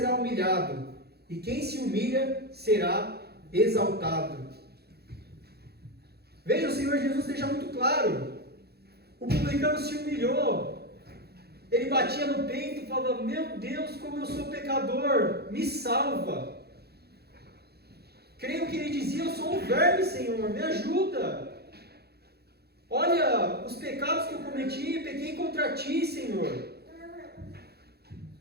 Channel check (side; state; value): left; late; 0.47 ms